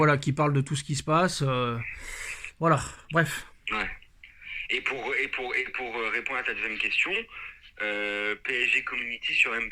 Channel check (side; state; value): both; identical; correlation 1.00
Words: qui parle de tout ce qui se passe. Voilà, bref. Ouais. Et pour répondre à ta deuxième question, PSG Community sur